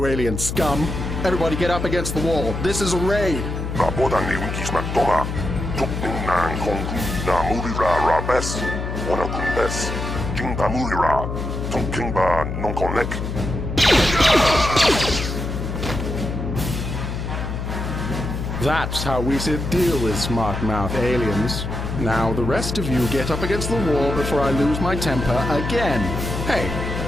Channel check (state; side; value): noise; left; hum, 4 dB below the sound